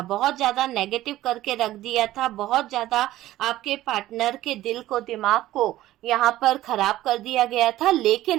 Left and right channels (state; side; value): quieter; left; 15.1 dB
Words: बहुत ज्यादा नेगेटिव करके रख दिया था, बहुत ज्यादा आपके पार्टनर के दिल को, दिमाग को यहाँ पर खराब कर दिया गया था। लेकिन